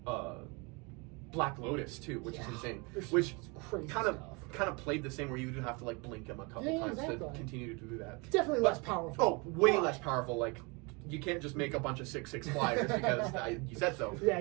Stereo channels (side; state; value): left; quieter; 29.4 dB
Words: Black Lotus too, which is insane. Which kind of played the same, where you would have to like blink him a couple times to continue to do that. Definitely less powerful. Oh, way less powerful. Like you can't just make a bunch of 6/6 flyers because you said so. Yeah,